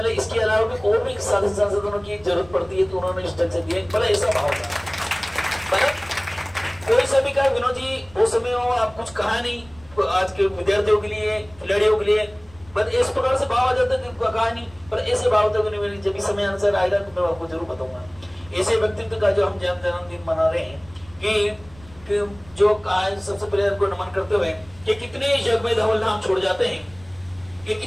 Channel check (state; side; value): noise; right; rumble, 24 dB below the sound